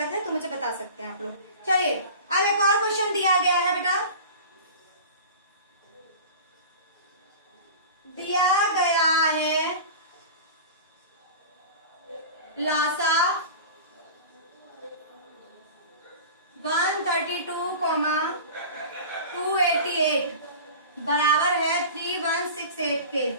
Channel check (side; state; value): both; inverted; correlation -0.35